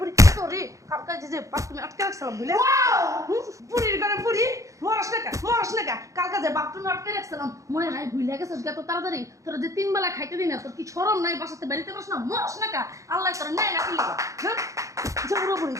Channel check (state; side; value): late; left; 0.15 ms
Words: বুড়ি তোরে কালকে যে বাপ তুমি আটকে রাখছিলাম বুঝলে বুড়ির ঘরে বুড়ি মরস না কালকে যে বাপ তুমি আটকে রাখছিলাম মনে নাই ভুলে গেছিস এত তাড়াতাড়ি তোর যে 3 বেলা খাইতে দিই না তোর কি শরম নাই বাসাতে বাড়িতে বস না মরস না আল্লাহ তোর নাই না কি হ্যাঁ যে বুড়ি